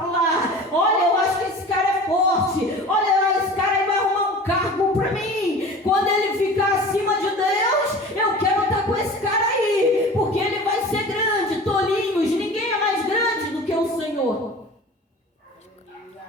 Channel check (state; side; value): normal; both; correlation 0.39